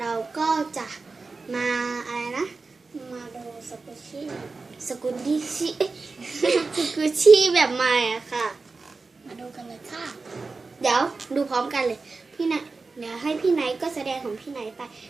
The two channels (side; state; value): left; quieter; 4.0 dB